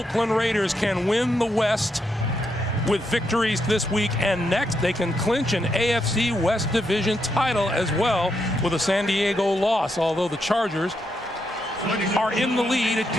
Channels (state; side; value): normal; both; correlation 0.81